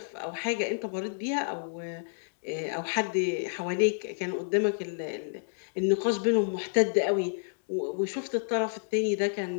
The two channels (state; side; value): silent; right; digital silence